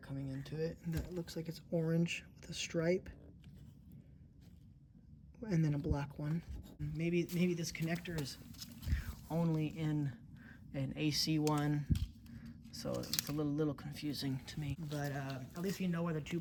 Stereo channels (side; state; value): both; identical; correlation 1.00